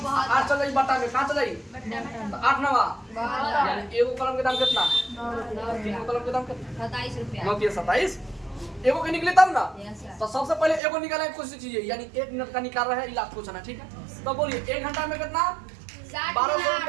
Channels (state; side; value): drops out; left; at 10.8 s